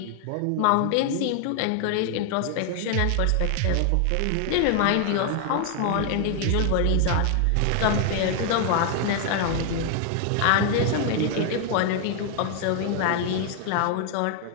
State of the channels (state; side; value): different; both; correlation 0.00